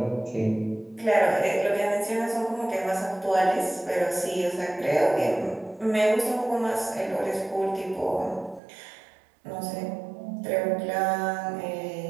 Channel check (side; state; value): left; drops out; at 8.6 s